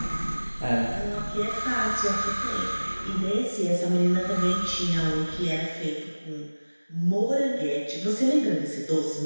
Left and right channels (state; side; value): inverted; both; correlation -1.00